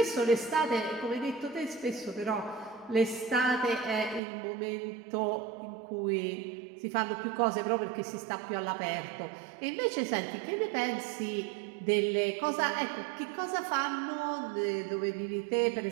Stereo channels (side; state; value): left; drops out; at 4.2 s